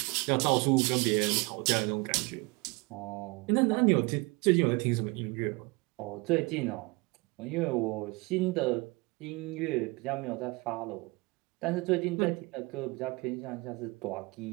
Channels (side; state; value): left; quieter; 25.9 dB